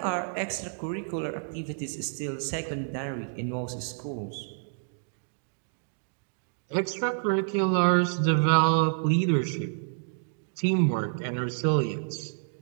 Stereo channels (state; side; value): silent; left; digital silence